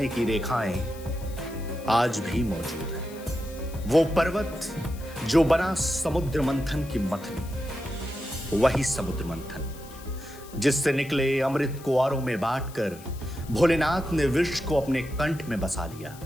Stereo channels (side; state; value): left; noise; hiss, 20 dB below the sound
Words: की रेखाएं आज भी मौजूद है। वो पर्वत जो बना समुद्र मंथन की मथनी, वही समुद्र मंथन जिससे निकले अमृत को औरों में बांटकर भोलेनाथ ने विष को अपने कंठ में बसा लिया।